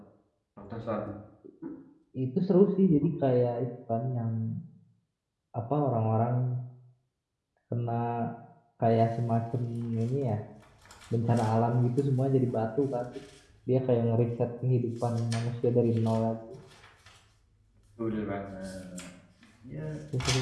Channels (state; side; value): identical; both; correlation 1.00